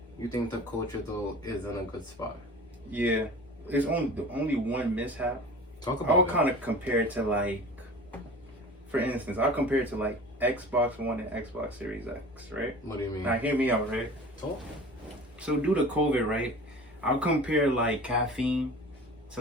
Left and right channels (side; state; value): both; normal; correlation 0.40